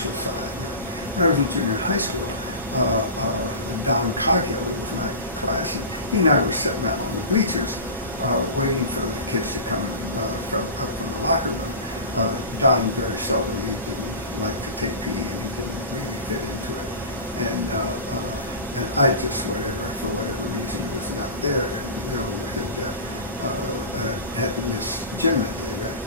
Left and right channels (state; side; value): inverted; both; correlation -0.31